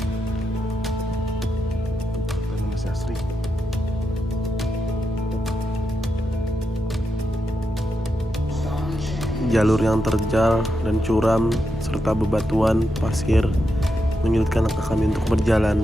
Dan masih asri. Jalur yang terjal dan curam serta bebatuan pasir menyulitkan langkah kami untuk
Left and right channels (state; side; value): normal; both; correlation 0.85